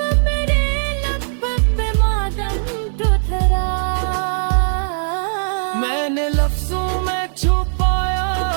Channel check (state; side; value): silent; left; digital silence